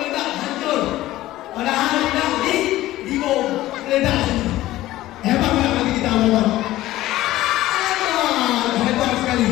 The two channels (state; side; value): quieter; right; 15.7 dB